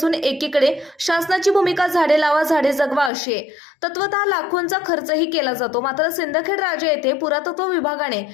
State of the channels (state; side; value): drops out; right; at 3.1 s